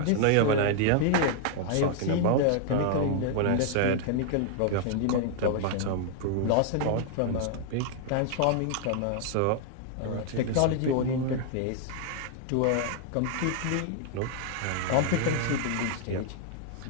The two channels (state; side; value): different; both; correlation 0.00